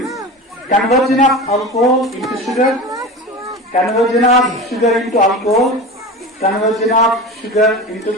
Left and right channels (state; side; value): normal; both; correlation 0.30